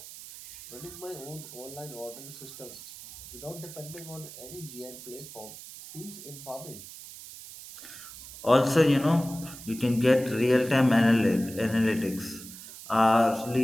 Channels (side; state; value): right; noise; hiss, 14 dB below the sound